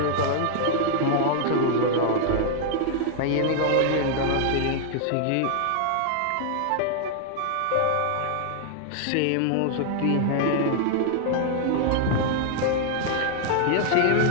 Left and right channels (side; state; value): both; different; correlation -0.01